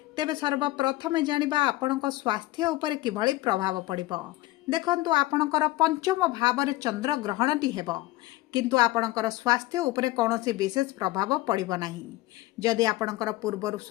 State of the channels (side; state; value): right; quieter; 17.9 dB